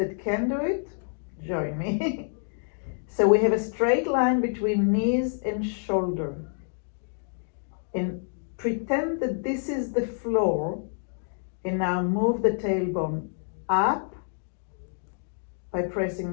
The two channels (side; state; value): right; silent; digital silence